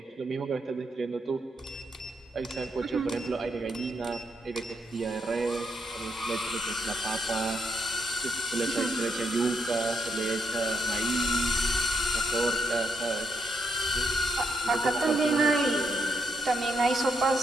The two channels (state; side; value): normal; both; correlation 0.77